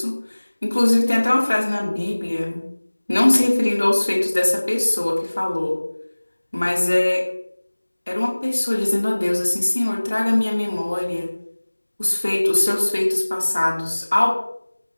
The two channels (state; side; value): inverted; both; correlation -1.00